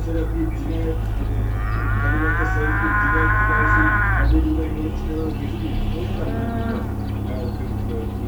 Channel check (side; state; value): both; identical; correlation 1.00